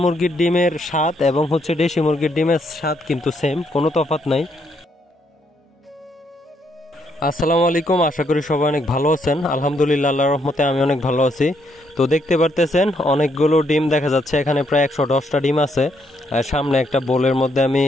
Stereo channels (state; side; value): normal; both; correlation 0.74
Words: মুরগির ডিমের স্বাদ এবং হচ্ছে দেশি মুরগির ডিমের স্বাদ কিন্তু সেম, কোনো তফাৎ নাই। আসসালামু আলাইকুম, আশা করি সবাই অনেক ভালো আছেন। আলহামদুলিল্লাহ, আল্লাহর রহমতে আমি অনেক ভালো আছি। তো দেখতে পারতেছেন অনেকগুলো ডিম দেখা যাচ্ছে, এখানে প্রায় 110টা ডিম আছে। সামনে একটা বোলের মধ্যে আমি